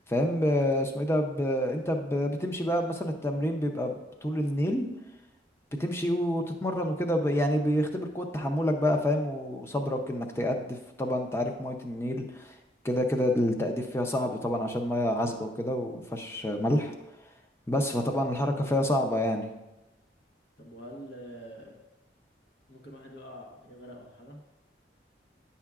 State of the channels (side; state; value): both; normal; correlation 0.71